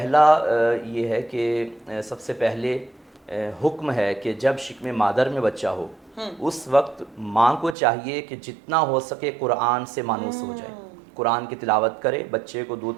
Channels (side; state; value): left; drops out; at 7.8 s